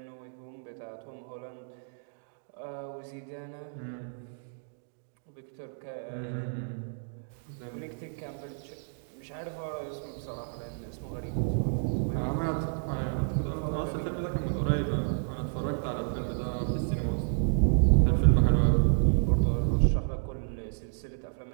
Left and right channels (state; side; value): silent; left; digital silence